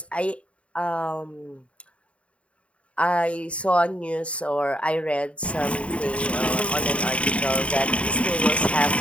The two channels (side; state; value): right; late; 0.063 ms